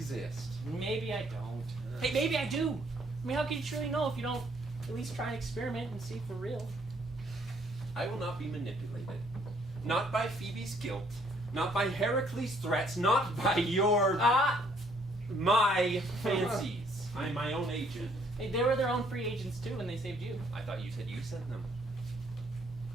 Maybe I don't. Hey, maybe I do. I mean, how can you truly know if you don't at least try and experiment and see for real? I will not be manipulated. Not by Phoebe's guilt. Not by Heracles' threats. Not by your... my fancies. I'm my own agent. Hey, they were their own free agents too when they saved you. I thought you said you sent them.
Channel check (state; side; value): normal; both; correlation 0.65